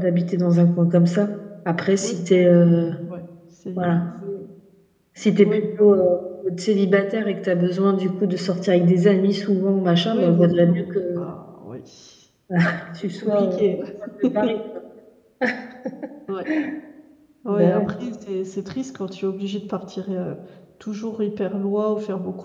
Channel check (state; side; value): identical; both; correlation 1.00